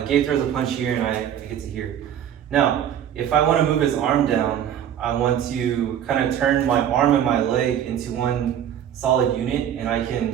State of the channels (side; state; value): left; quieter; 9.8 dB